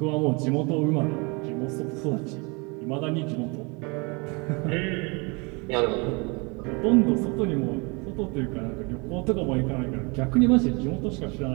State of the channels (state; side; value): quieter; left; 29.8 dB